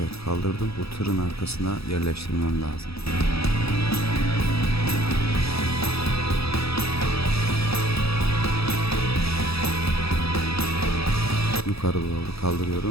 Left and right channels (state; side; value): late; right; 0.77 ms